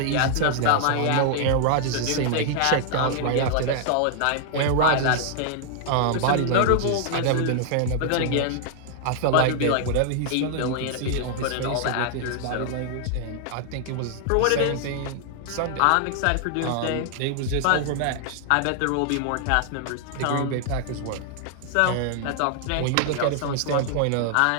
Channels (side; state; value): both; different; correlation 0.00